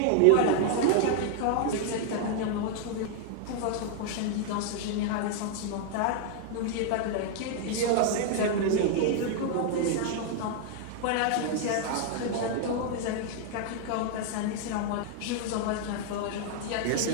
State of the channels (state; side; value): different; both; correlation 0.00